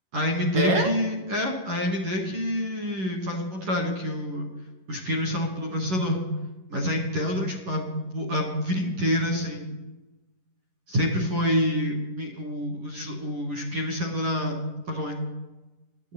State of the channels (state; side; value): late; left; 11 ms